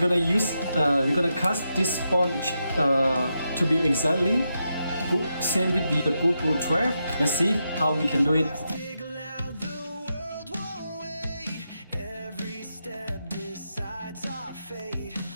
cast this sponge to be exactly same with the GoPro 12. Let's see how we can do it. Every step decides our fate.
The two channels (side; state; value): both; inverted; correlation -0.85